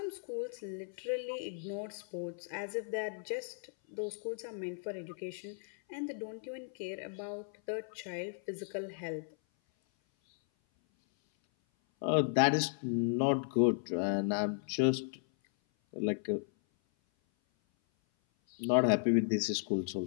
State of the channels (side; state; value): right; silent; 54 dB below the other